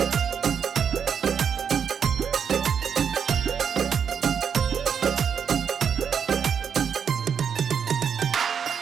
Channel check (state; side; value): quieter; left; 7.3 dB